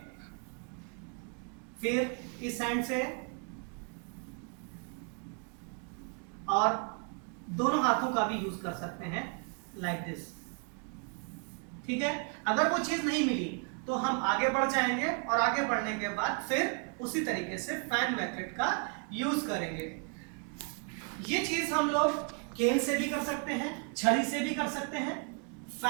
फिर इस हैंड से और दोनों हाथों का भी यूज कर सकते हैं लाइक दिस, ठीक है। अगर वो चीज नहीं मिली तो हम आगे बढ़ जाएंगे और आगे बढ़ने के बाद फिर उसी तरीके से फैन मेथड का यूज करेंगे। ये चीज हम लोग केन से भी कर सकते हैं, छड़ी से भी कर सकते हैं।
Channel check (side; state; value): left; quieter; 39.4 dB